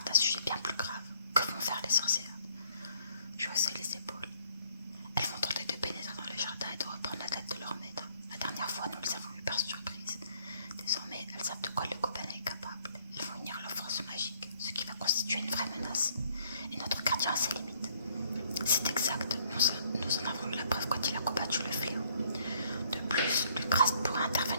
d'un sujet bien plus grave. Que vont faire les sorcières? Je haussai les épaules. Elles vont tenter de pénétrer dans le jardin et de reprendre la tête de leur maître. La dernière fois, nous les avons eues par surprise. Désormais, elles savent de quoi le gobelin est capable. Elles vont unir leur force magique, ce qui va constituer une vraie menace. Et notre gardien a ses limites. C'est exact, nous en avons eu la preuve quand il a combattu le fléau. De plus, Lucraste pourra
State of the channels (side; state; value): both; inverted; correlation -0.64